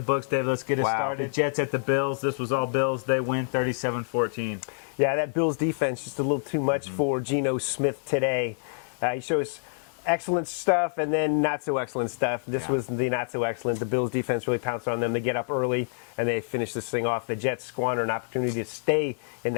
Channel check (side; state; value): right; silent; 55 dB below the other